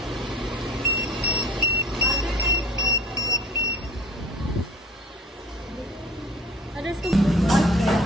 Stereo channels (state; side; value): normal; both; correlation 0.46